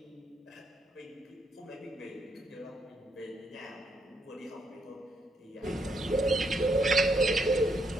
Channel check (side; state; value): both; normal; correlation 0.76